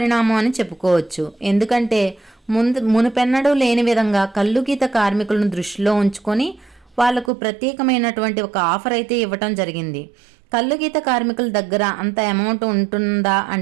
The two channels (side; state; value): left; drops out; at 7.3 s